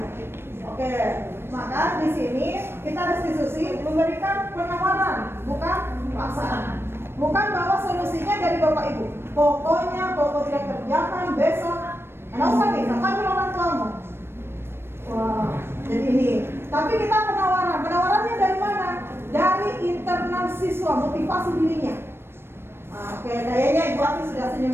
Oke, Maka di sini kita restitusi memberikan penawaran, bukan paksaan. Bukan bahwa solusinya dari Bapak Ibu. Pokoknya pokok tidak kerjakan besok. Nggak usah nih, panggil orang tuamu. Wah, jadi ini. Tapi kita penawaran. Penawarannya dari mana? Dari internal siswa, motivasi dirinya. Nah, oke, kayaknya Ibu Ati sudah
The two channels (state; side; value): late; left; 0.12 ms